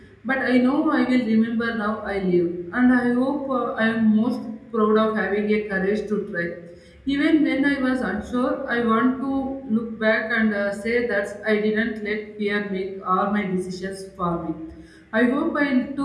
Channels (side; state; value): both; identical; correlation 1.00